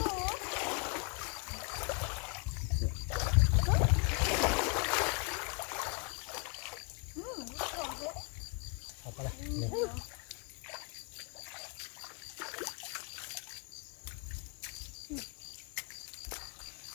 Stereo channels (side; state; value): right; quieter; 35.2 dB